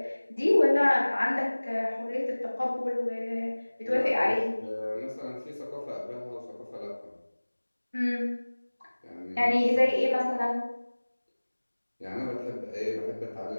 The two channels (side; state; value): both; inverted; correlation -1.00